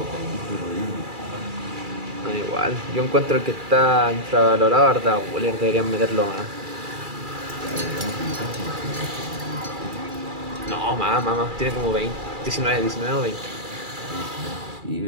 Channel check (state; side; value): late; left; 2.4 ms